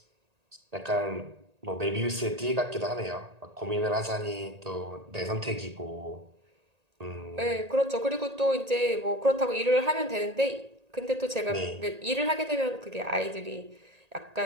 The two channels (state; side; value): late; left; 1.8 ms